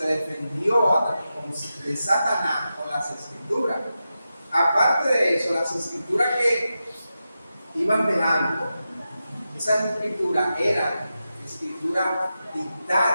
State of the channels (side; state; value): both; inverted; correlation -0.90